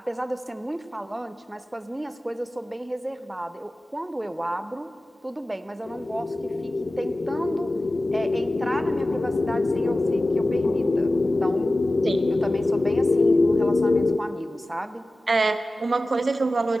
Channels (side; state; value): both; normal; correlation 0.96